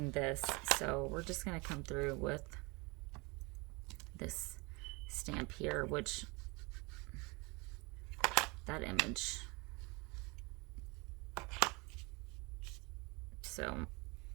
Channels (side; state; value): left; quieter; 27.5 dB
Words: this. So we're just going to come through with this stamp here, which that image. So I'm